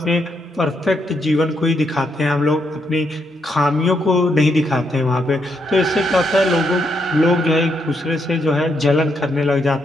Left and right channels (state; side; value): normal; both; correlation 0.78